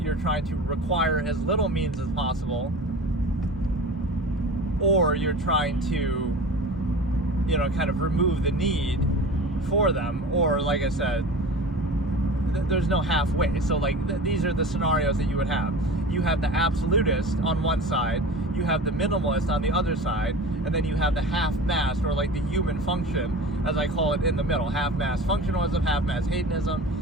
trying to require as little means as possible, or you're trying to, kind of remove the need for them, or like I said, there's no halfway. So these are the scenarios that you would have. You have the absolutist on one side, you have the minimalist on the other side, and then you have the half-mass, or the human function, as I call it, in the middle. Half-mass functionalism, half-mass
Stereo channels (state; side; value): normal; both; correlation 0.36